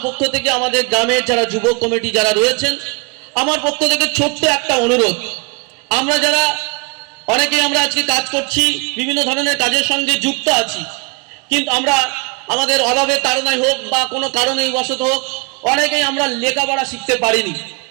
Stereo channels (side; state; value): left; quieter; 30.3 dB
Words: পক্ষ থেকে আমাদের গ্রামের যারা যুবক কমিটি যারা রয়েছেন, আমার পক্ষ থেকে ছোট্ট একটা অনুরোধ, আমরা যারা অনেকেই আমরা আজকে কাজ করছি, বিভিন্ন ধরনের কাজের সঙ্গে যুক্ত আছি, কিন্তু আমরা আমাদের অভাবের তাড়নায় হোক বা কোনো কারণেই বশত হোক অনেকেই আমরা লেখাপড়া শিখতে পারিনি।